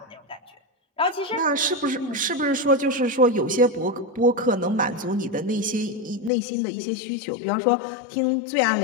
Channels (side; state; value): right; drops out; at 6.3 s